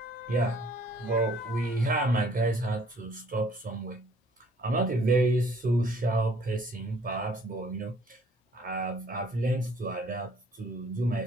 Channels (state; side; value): normal; both; correlation 0.59